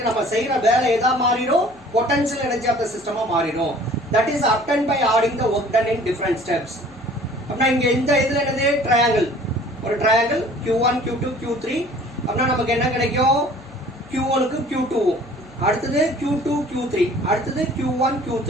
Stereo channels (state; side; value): noise; left; hum, 25 dB below the sound